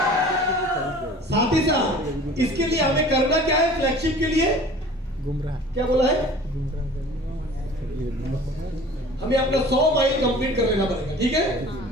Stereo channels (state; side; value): normal; both; correlation 0.44